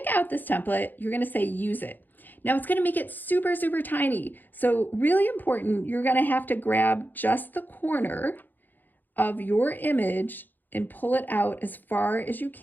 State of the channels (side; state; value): right; late; 0.088 ms